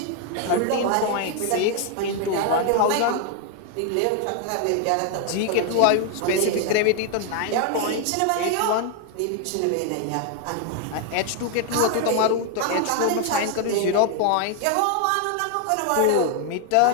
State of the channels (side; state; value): both; different; correlation 0.01